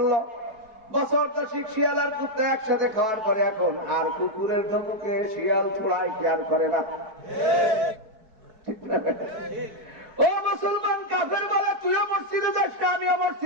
বছর দশিক শিয়াল আর কুত্তা একসাথে খাওয়ার পরে এখন আর কুকুরের ধমকে শিয়াল ছোড়ায় কি আর করে না, ঠিক না? ও মুসলমান কাফের বলে তুইও মসজিদে যাস না আমিও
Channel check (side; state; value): left; late; 4.6 ms